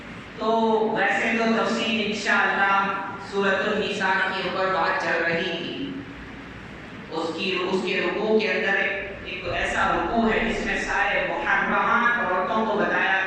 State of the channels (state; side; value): identical; both; correlation 1.00